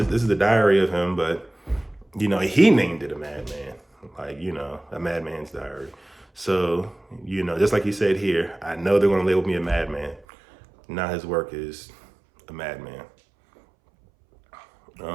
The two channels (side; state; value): left; drops out; at 10.2 s